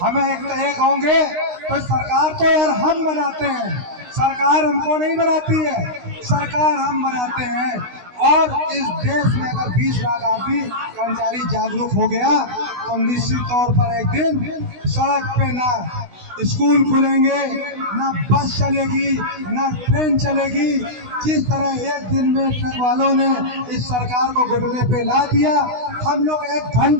हमें एक होंगे तो सरकार तो यार हम बनाते हैं, सरकार हमको नहीं बनाती है, सरकार हम बनाते हैं। और इस देश में अगर 20 लाख आदमी कर्मचारी जागरूक हो गया तो निश्चित तौर पर एक दिन सड़क पे ना स्कूल खुलेंगे, ना बस चलेगी, ना ट्रेन चलेगी। जिस तरह एक दिन में ट्रक वालों ने इस सरकार को घुटने पे ला दिया, हम लोग 1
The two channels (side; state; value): left; late; 16 ms